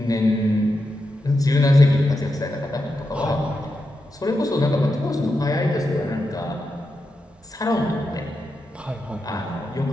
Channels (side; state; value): both; normal; correlation 0.87